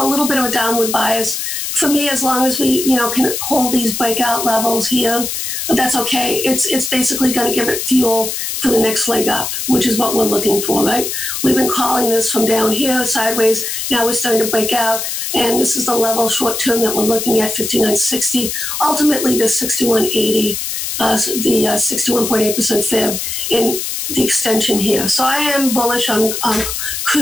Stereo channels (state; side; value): noise; left; hiss, 4 dB below the sound